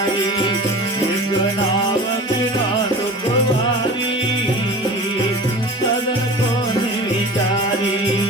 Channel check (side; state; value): both; normal; correlation 0.37